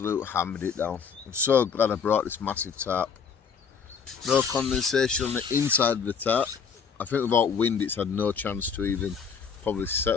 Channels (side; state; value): right; quieter; 6.3 dB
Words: hammered it down. I'm so glad I brought this massive tarp. No condensation on the inside of the tarp. I think without wind it's had no chance to even probably